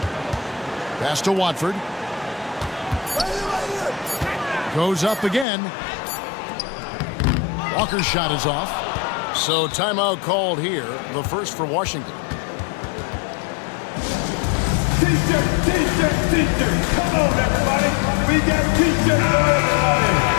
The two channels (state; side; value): drops out; right; at 5.5 s